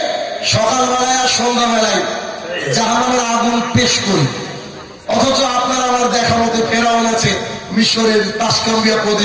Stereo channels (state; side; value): identical; both; correlation 1.00